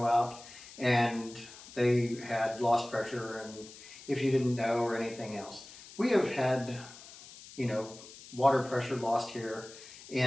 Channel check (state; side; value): noise; left; hiss, 18 dB below the sound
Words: out and they had lost pressure, and if you didn't know, or anything else. We have had, water pressure lost here